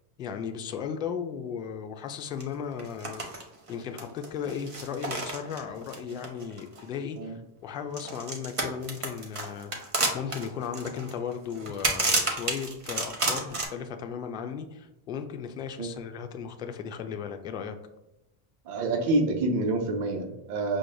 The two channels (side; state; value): left; late; 1.5 ms